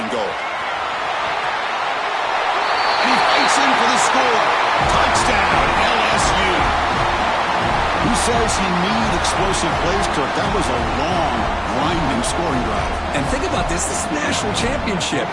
goal. And he fights in for the score. Touchdown, LSU. Who's says he needed explosive plays, Kirk. That was a long, grinding scoring drive. And think about this. This is a national championship,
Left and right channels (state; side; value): identical; both; correlation 1.00